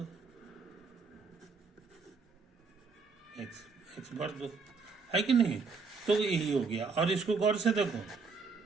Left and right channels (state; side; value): quieter; left; 4.7 dB